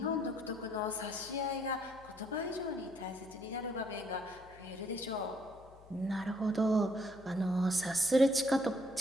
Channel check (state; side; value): noise; left; hum, 22 dB below the sound